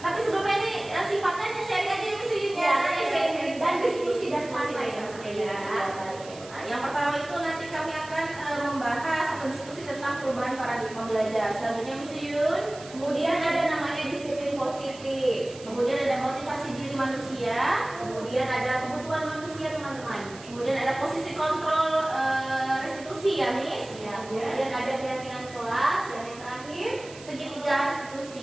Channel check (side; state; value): right; noise; hiss, 18 dB below the sound